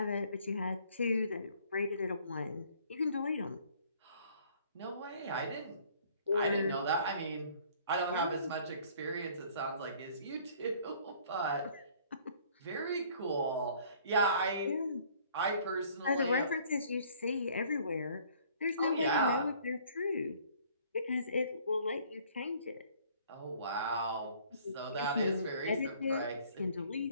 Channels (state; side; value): inverted; both; correlation -0.57